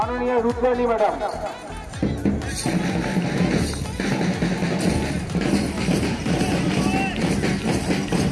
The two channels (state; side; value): identical; both; correlation 1.00